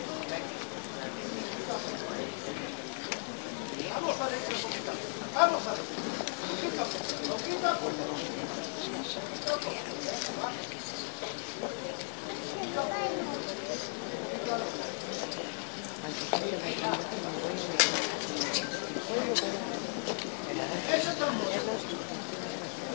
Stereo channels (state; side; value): silent; right; 54 dB below the other